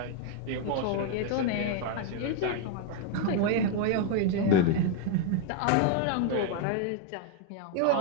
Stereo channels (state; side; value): different; both; correlation 0.01